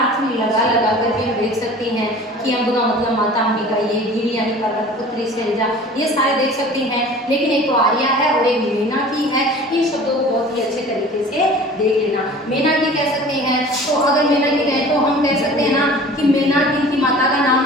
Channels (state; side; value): normal; both; correlation 0.43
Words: लगा कर भी हम देख सकते हैं कि अम्ब का मतलब माता अंबिका, ये गिरी यानी पर्वत, पुत्री शेरजा, ये सारे देख सकते हैं। लेकिन एक तो आर्या है और एक मेनाकी है, इन शब्दों को बहुत ही अच्छे तरीके से देख लेना। मेनाकी कह सकते हैं, तो अगर मेनाकी कहें तो हम कह सकते हैं ना कि मेनाक इनकी माता का